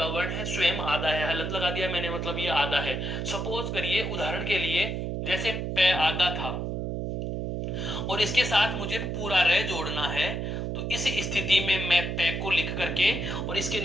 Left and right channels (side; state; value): right; noise; hum, 2 dB below the sound